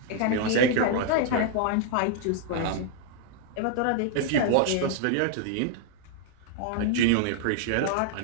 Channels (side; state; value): both; different; correlation 0.00